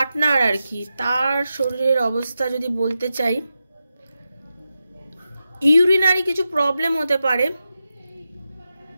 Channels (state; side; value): inverted; both; correlation -0.90